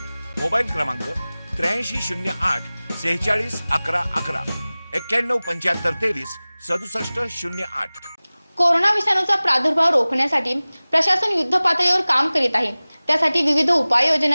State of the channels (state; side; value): inverted; both; correlation -0.99